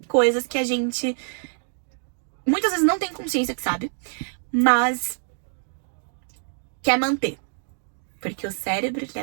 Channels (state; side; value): silent; left; 62 dB below the other